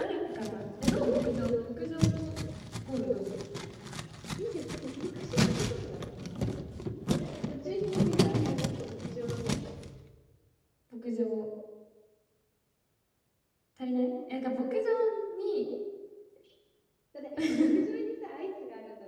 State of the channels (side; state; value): both; identical; correlation 1.00